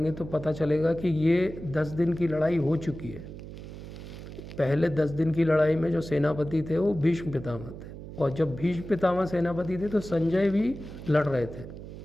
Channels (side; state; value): right; noise; hum, 12 dB below the sound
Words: तो पता चलेगा कि ये 10 दिन की लड़ाई हो चुकी है। पहले 10 दिन की लड़ाई में जो सेनापति थे वो भीष्म पितामह थे, और जब भीष्म पितामह सेनापति थे तो संजय भी लड़ रहे थे